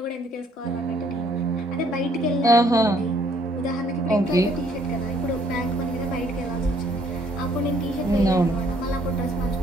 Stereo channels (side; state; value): both; normal; correlation 0.64